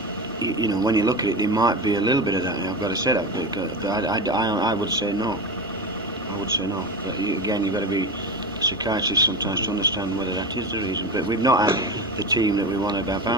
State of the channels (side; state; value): both; normal; correlation 0.24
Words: when you look at it, there might be a little bit of that. I've got to say that, but I would say no. I would say no. But again, you've got to be psychiatrists sometimes to understand whether that is the reason. But we've not had the team that we wanted